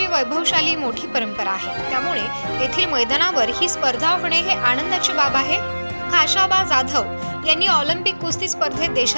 वैभवशाली मोठी परंपरा आहे। त्यामुळे येथील मैदानावर ही स्पर्धा होणे हे आनंदाची बाब आहे। खाशाबा जाधव यांनी ऑलिम्पिक कुस्ती स्पर्धेत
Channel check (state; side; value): inverted; both; correlation -1.00